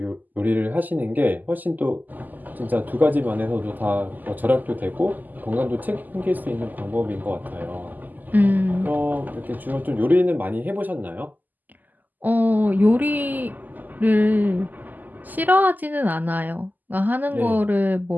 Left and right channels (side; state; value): left; late; 0.084 ms